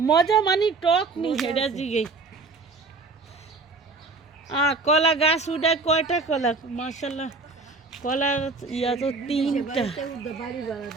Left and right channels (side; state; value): left; quieter; 3.9 dB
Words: মজা মানে টক নি হেডা জিগে। কলা গাছ উঠায় কয়টা কলা? মাশাআল্লাহ কলা ইয়া তো 3টা। বাড়িতে উঠবে, বাড়ি ভাড়া